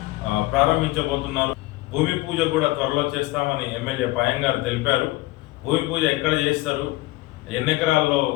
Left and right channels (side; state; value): right; quieter; 19.3 dB